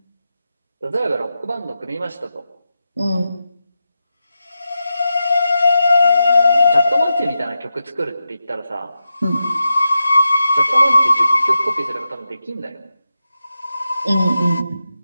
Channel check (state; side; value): inverted; both; correlation -0.89